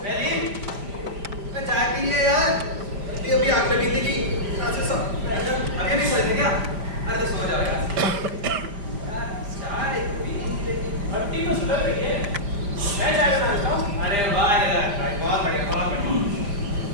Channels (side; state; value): left; late; 4.9 ms